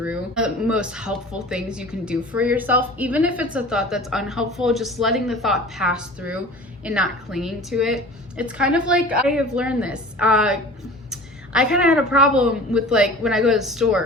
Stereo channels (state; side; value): normal; both; correlation 0.41